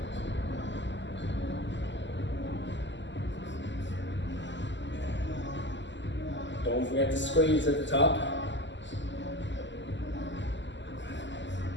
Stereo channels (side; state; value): right; late; 0.53 ms